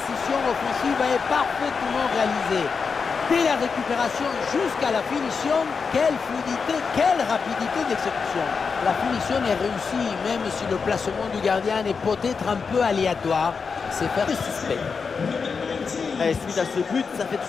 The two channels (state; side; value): quieter; right; 5.4 dB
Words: offensive est parfaitement réalisée. Dès la récupération jusqu'à la finition, quelle fluidité, quelle rapidité d'exécution. La finition est réussie, même si le placement du gardien est peut-être un peu aléatoire. C'est faire du suspect. Et suite à ce but, ça fait